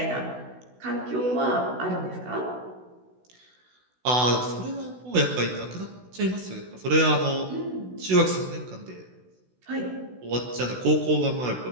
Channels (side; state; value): left; late; 16 ms